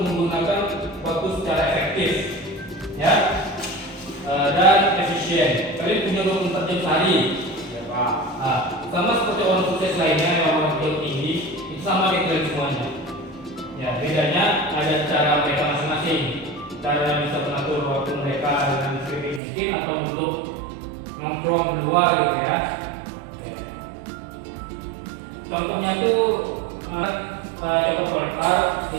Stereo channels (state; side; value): drops out; left; at 19.4 s